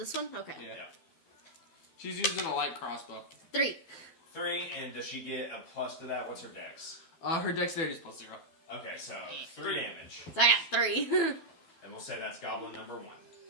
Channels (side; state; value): right; late; 12 ms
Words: one. Okay. Yeah. She's using a light crossbow. 3. 3, and does she get a plus to that? What's her dex? Her dexterity is +0. Okay, so 3 damage. So I got 3. And we'll say that's goblin number